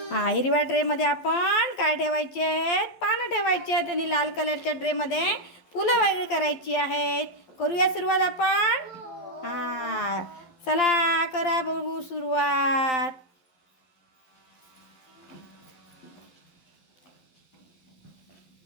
हिरव्या ट्रेमध्ये आपण काय ठेवायचे आहेत? पानं ठेवायची आहेत आणि लाल कलरच्या ट्रेमध्ये फुलं वेगळी करायची आहेत. करूया सुरुवात आपण. चला करा बघू सुरुवात.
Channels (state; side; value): late; right; 12 ms